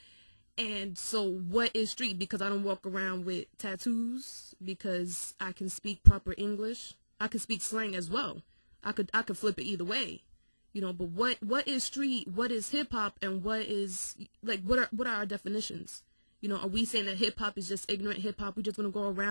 And so what is street? Because I don't walk around with tattoos, because I can speak proper English. I can speak slang as well. I could flip it either way, you know. But what is street? What is hip hop? And what is, like, what are our definitions? You know, are we saying that hip hop is just ignorant hip hop? We just want to go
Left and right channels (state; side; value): inverted; both; correlation -1.00